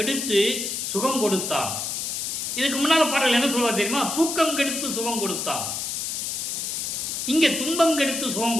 சுகம் கொடுத்தான். இதுக்கு முன்னால பாடல் என்ன சொல்வார் தெரியுமா? தூக்கம் கெடுத்து சுகம் கொடுத்தான். இங்கே துன்பம் கெடுத்து சுகம்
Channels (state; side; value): noise; left; hiss, 3 dB below the sound